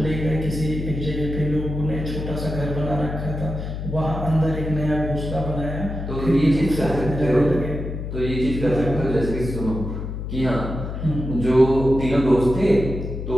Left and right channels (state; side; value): noise; left; hum, 6 dB below the sound